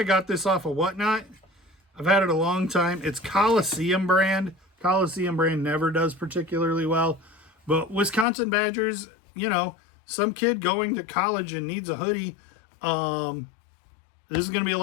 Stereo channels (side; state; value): right; drops out; at 8.2 s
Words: got this off of Whatnot. I've had it a long time. It's Coliseum brand. Coliseum brand never does particularly well. But Wisconsin badgers, some kid going to college and needs a hoodie. This is going to be a